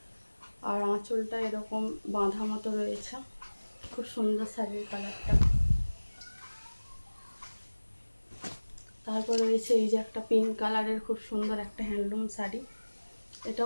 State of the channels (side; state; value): both; inverted; correlation -1.00